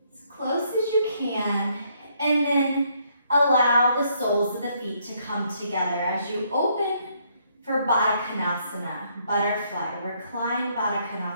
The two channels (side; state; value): both; inverted; correlation -0.71